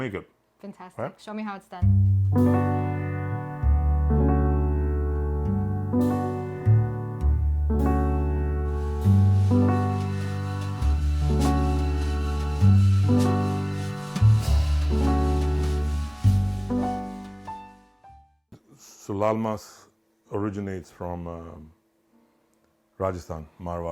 it. Fantastic. Right? Show me how it's done. So Laal Maas originates from Rajasthan,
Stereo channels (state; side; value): identical; both; correlation 1.00